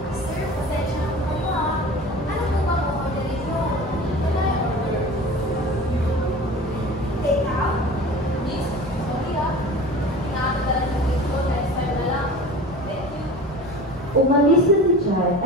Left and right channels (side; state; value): both; normal; correlation 0.38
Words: Umalis na si Chad